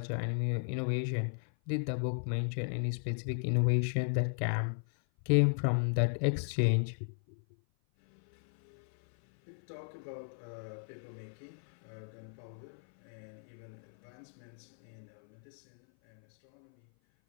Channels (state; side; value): silent; right; 54 dB below the other